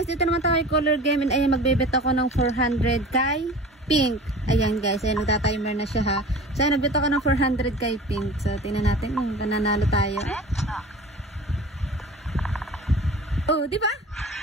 dito naman tayo kay Color Game. And ayan, magbebet ako ng 400 kay Pink. Ayan guys, ayan, nagtatimer na siya ha. So, ayan, nagbet ako ng 400 kay Pink. So, tingnan natin kung nananalo tayo. Di ba?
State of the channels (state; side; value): normal; both; correlation 0.39